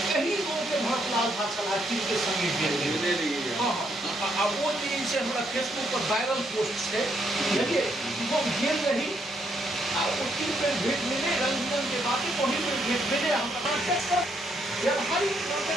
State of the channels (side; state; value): both; normal; correlation 0.74